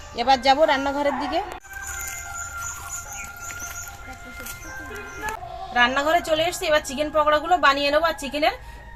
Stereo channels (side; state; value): both; identical; correlation 1.00